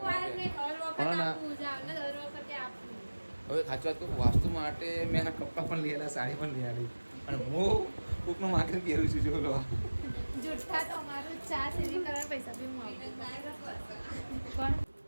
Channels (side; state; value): both; inverted; correlation -1.00